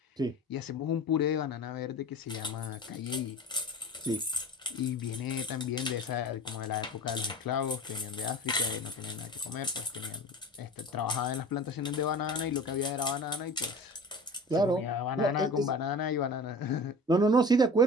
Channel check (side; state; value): both; normal; correlation 0.37